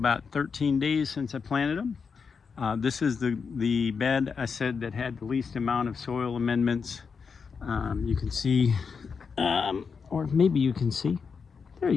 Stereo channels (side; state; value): right; quieter; 5.6 dB